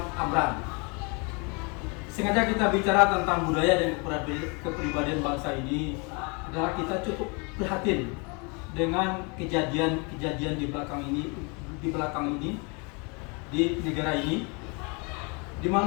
Amran. Sengaja kita bicara tentang budaya dan kepribadian bangsa ini adalah kita cukup prihatin dengan kejadian-kejadian di belakang ini di negara ini, di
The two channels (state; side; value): quieter; right; 31.9 dB